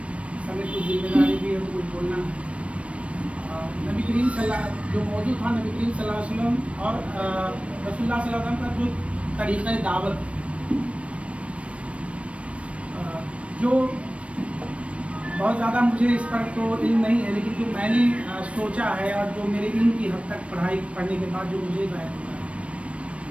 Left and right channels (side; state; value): left; late; 0.062 ms